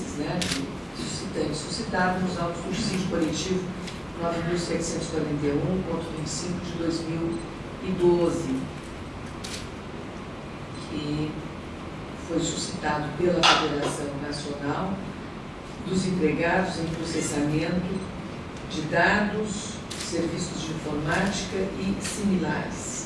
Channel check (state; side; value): identical; both; correlation 1.00